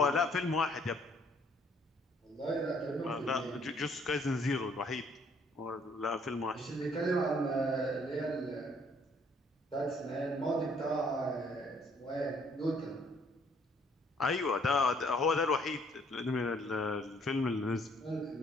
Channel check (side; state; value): both; normal; correlation 0.63